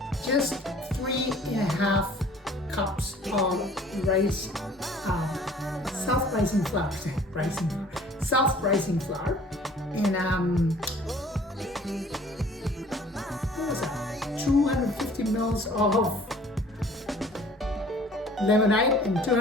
just 3.5 cups of self-rising flour, self-rising flour, and 250 mils of lemonade and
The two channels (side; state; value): both; normal; correlation 0.52